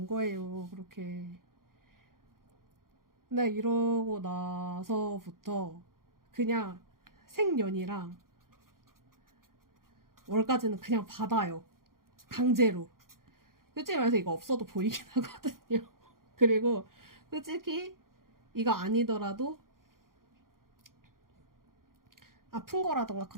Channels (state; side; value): late; left; 0.91 ms